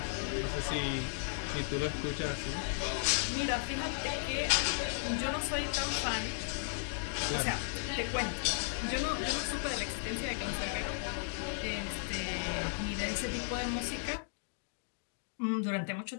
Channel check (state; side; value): silent; right; digital silence